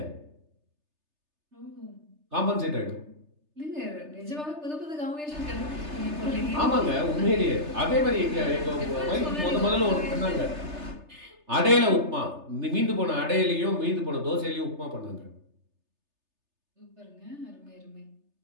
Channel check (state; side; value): late; left; 3.3 ms